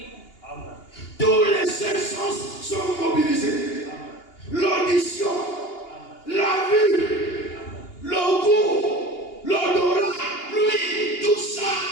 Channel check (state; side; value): late; right; 2.8 ms